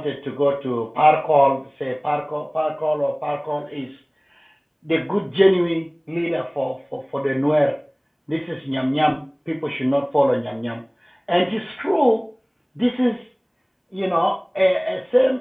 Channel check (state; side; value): identical; both; correlation 1.00